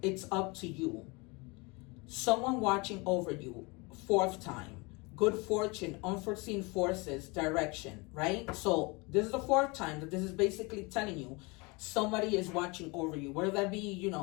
It's up to you. Someone watching over you. Fourth time. Good fortune, unforeseen forces, direction, right? So this is the fourth time that this is basically telling you somebody is watching over you, whether that be, you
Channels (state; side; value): quieter; right; 27.2 dB